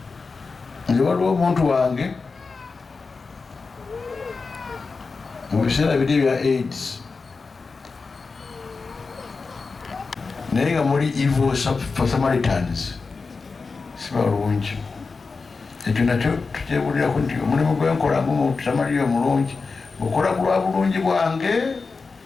Nze waliwo omuntu wange mu biseera biri ebya AIDS naye nga muli evil Samaritans sibalungi. Ekyo nakyo tukyebulirako nti omulimu gwenkola Samaliya omulungi okola ku lwa bulungi bwange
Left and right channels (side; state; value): right; quieter; 4.4 dB